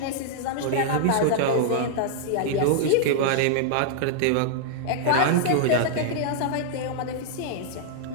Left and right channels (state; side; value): different; both; correlation -0.01